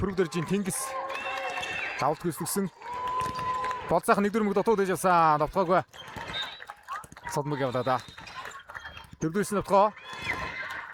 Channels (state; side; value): identical; both; correlation 1.00